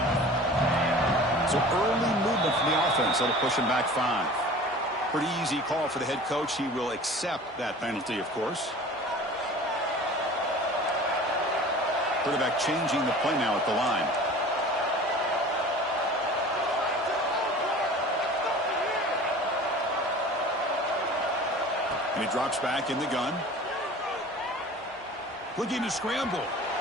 So early movement from the offense. That'll push him back 5. Pretty easy call for the head coach. He will accept that penalty, of course. Quarterback changing the play now at the line. And he drops back in the gun. Looking to scramble.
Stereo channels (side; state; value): both; normal; correlation 0.41